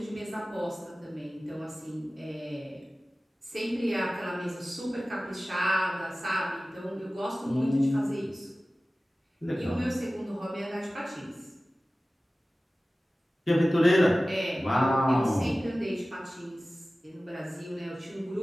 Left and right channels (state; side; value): normal; both; correlation 0.97